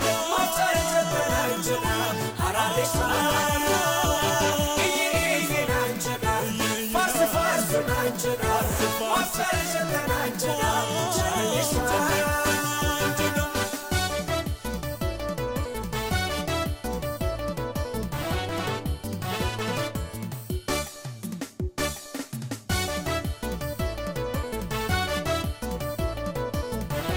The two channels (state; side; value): identical; both; correlation 1.00